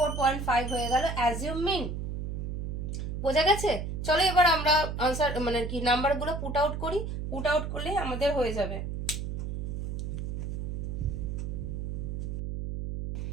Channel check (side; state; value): right; noise; hum, 4 dB below the sound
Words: হয়ে গেল অ্যাজিউম মিন। বোঝা গেছে? চলো এবার আমরা আনসার মানে কি নাম্বারগুলো পুট আউট করি। পুট আউট করলে আমাদের হয়ে যাবে।